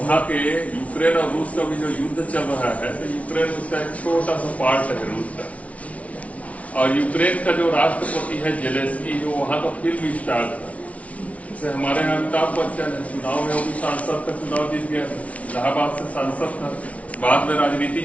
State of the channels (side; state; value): right; late; 0.066 ms